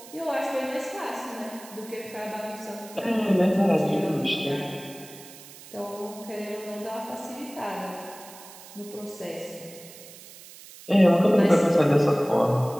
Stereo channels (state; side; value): noise; right; hiss, 18 dB below the sound